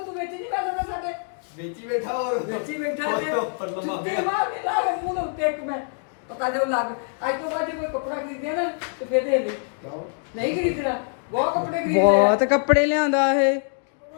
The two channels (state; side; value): silent; right; 56 dB below the other